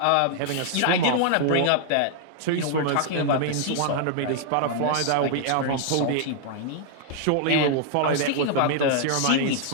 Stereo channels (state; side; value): different; both; correlation -0.01